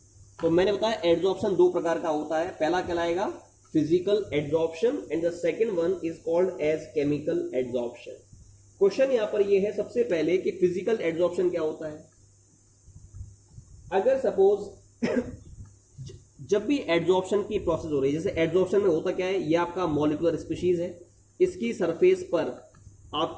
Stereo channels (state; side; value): identical; both; correlation 1.00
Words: तो मैंने बताया एड्जॉर्प्शन दो प्रकार का होता है। पहला कहलाएगा physical adsorption and the second one is called as chemical adsorption. Question यहां पर यह है सबसे पहले कि फिजिकल एड्जॉर्प्शन क्या होता है। अगर सपोज जब भी एड्जॉर्प्शन की प्रोसेस हो रही है, जैसे एड्जॉर्प्शन में होता क्या है, ये आपका मॉलिक्यूलर स्पीशीज है, इसकी सरफेस पर